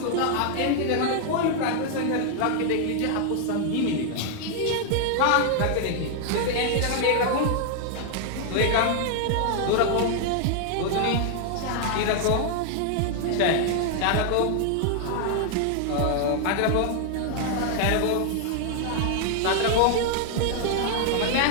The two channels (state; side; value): different; both; correlation 0.00